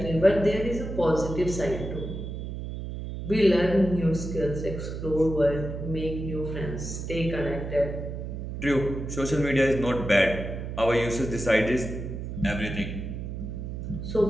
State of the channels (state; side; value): noise; right; hum, 6 dB below the sound